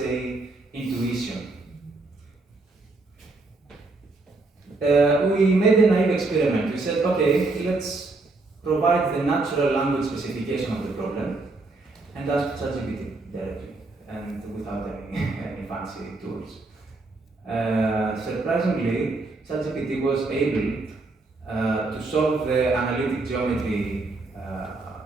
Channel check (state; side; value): quieter; left; 3.4 dB